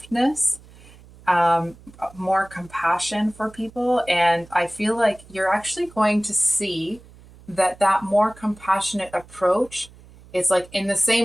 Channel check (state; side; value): noise; right; hum, 23 dB below the sound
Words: more compassion for people. And I feel like you're actually going to see that more compassionate approach, it's like in the